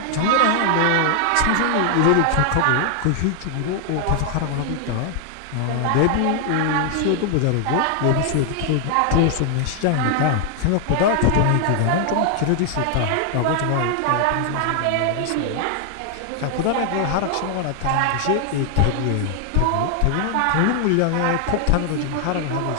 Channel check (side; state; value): both; different; correlation 0.00